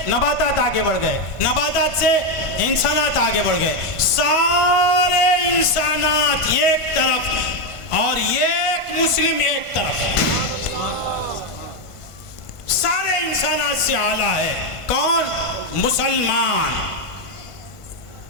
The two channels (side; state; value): right; late; 1.5 ms